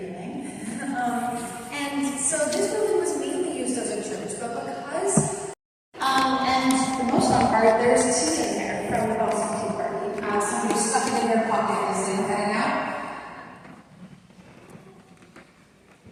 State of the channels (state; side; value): identical; both; correlation 1.00